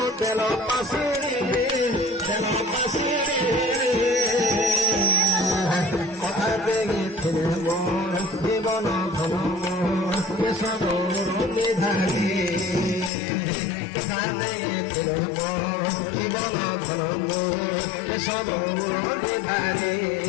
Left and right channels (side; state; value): right; drops out; at 13.1 s